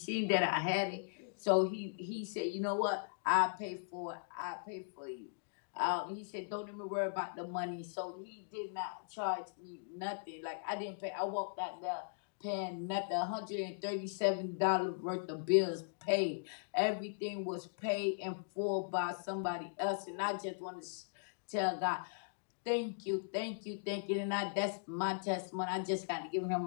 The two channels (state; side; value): silent; right; digital silence